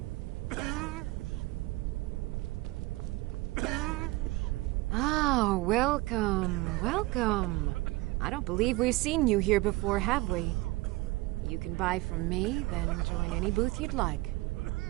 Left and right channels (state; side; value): quieter; left; 20.7 dB